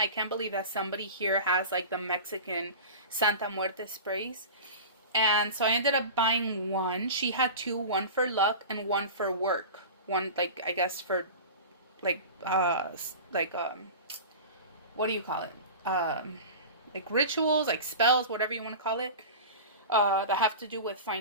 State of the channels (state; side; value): inverted; both; correlation -0.33